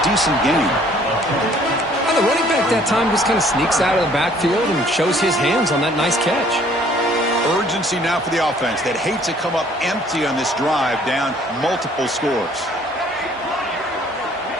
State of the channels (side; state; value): both; normal; correlation 0.58